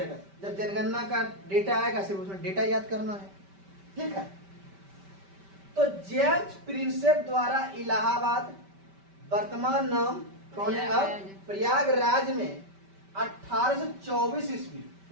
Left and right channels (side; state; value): left; late; 5.1 ms